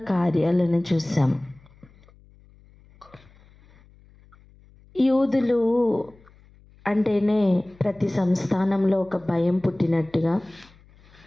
కార్యాలను చూసాం. యూదులు అంటేనే ప్రతి సంస్థానంలో ఒక భయం పుట్టినట్టుగా,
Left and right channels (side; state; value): left; noise; hum, 28 dB below the sound